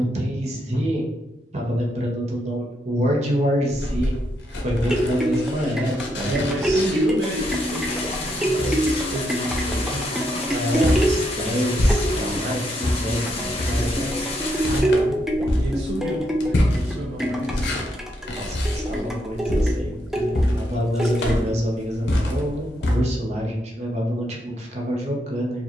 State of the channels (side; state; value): both; normal; correlation 0.79